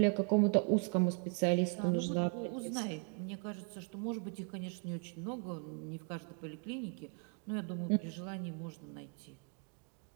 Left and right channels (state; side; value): quieter; left; 39.8 dB